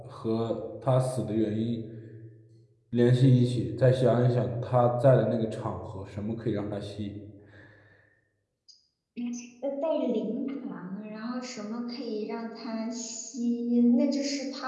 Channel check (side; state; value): both; identical; correlation 1.00